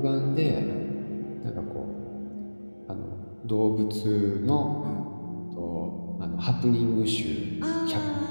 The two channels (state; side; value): inverted; both; correlation -1.00